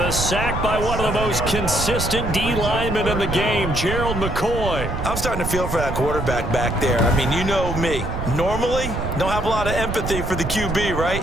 a sack by one of the most consistent D linemen in the game, Gerald McCoy. I'm starting to feel for that quarterback back there. I mean, you know me. Normally, don't have a lot of empathy for the QB,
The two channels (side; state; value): right; noise; rumble, 4 dB below the sound